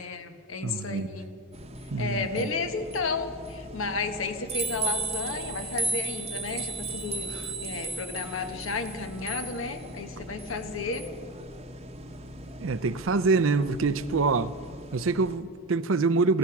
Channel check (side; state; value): both; normal; correlation 0.20